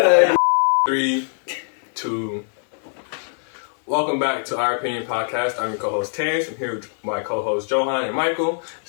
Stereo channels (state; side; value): silent; right; digital silence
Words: 3, 2. Welcome back to Our Opinion Podcast. I'm your co-host Terence, and here with my co-host Jhoan and Michael.